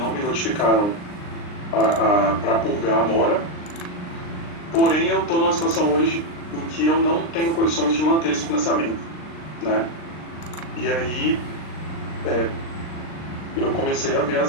me notificaram para purgar a mora, porém eu estou numa situação hoje em que eu não tenho condições de manter esse financiamento, né? E aí eu comecei a ver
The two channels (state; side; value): late; right; 39 ms